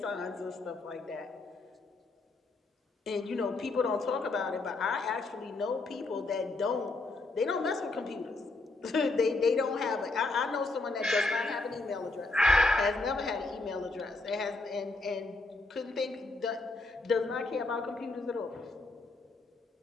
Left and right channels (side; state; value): right; quieter; 3.4 dB